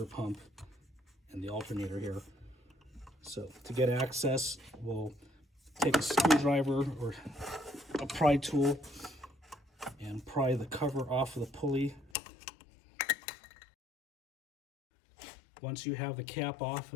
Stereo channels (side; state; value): right; drops out; at 12.1 s